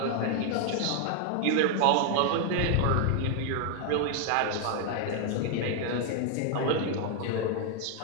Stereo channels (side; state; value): both; different; correlation 0.00